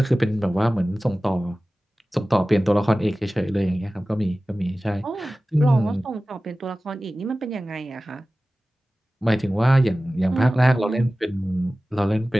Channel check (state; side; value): normal; both; correlation 0.97